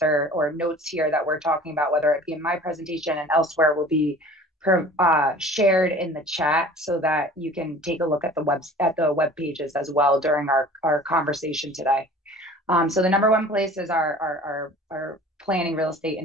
notes here that we're talking about, whether it be in my presentation and elsewhere, will be shared in the chat so that you can take a look at the web pages as well during our conversation today. So the number one place is our planning, real estate,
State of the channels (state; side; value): normal; both; correlation 0.45